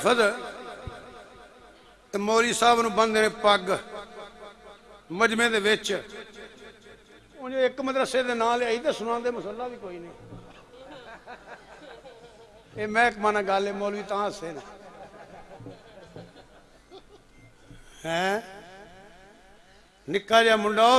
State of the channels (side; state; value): both; identical; correlation 1.00